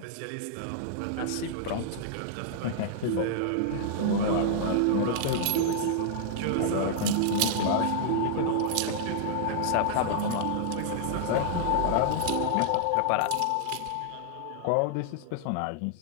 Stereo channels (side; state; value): both; different; correlation -0.01